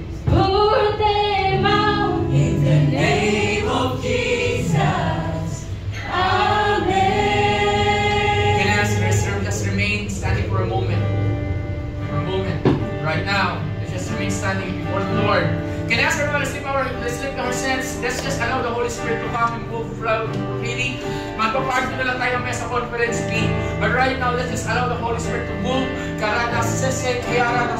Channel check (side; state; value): both; identical; correlation 1.00